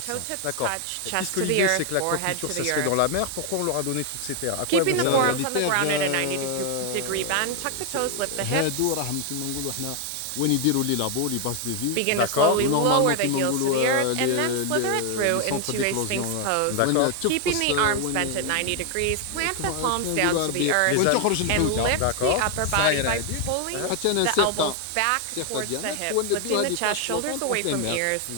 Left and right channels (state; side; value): different; both; correlation 0.01